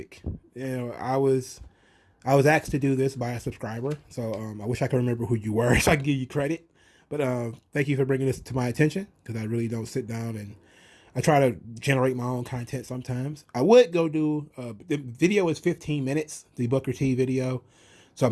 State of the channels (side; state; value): both; identical; correlation 1.00